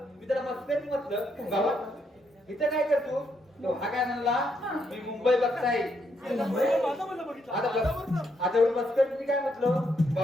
मी त्याला मस्करी म्हटलं बाबा इथं काय करतो तो हा काय म्हणला मी मुंबई बघताय आता एवढी मस्करी मी काय म्हटलं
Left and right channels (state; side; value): normal; both; correlation 0.76